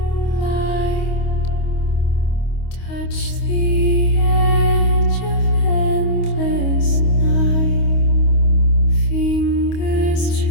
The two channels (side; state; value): right; late; 25 ms